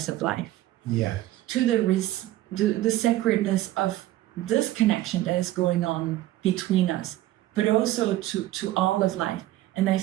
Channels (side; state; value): left; quieter; 15.2 dB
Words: of life, to the sacredness of this connection that is going on between us, but also to all of life. And I